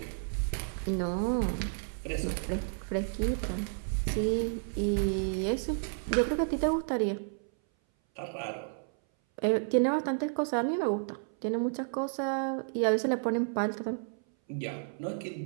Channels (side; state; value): left; silent; 57 dB below the other